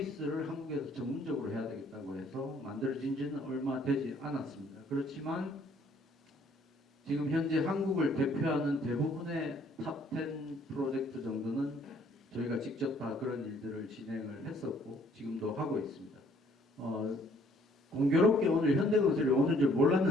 한국에서 전문적으로 해야 되겠다고 해서 만들어진 지는 얼마 되지 않았습니다. 그렇지만 지금 현재 한국을 대표하는 대부분의 탑10 프로젝트 정도는 저희가 직접 다 그런 일들을 진행을 했었고 지금도 하고 있습니다. 공교롭게 오늘 현대건설이 오는 줄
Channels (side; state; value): both; normal; correlation 0.62